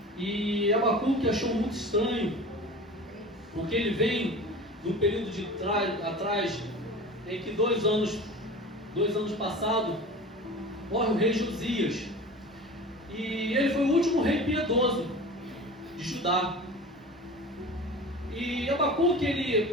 E Abacuque achou muito estranho, porque ele vem num período de atrás, em que 2 anos passados, morre o rei Josias. E ele foi o último rei piedoso de Judá. E Abacuque,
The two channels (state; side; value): normal; both; correlation 0.36